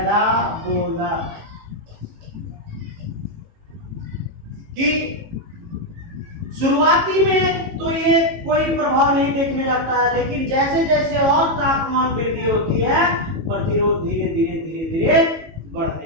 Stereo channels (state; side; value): late; left; 18 ms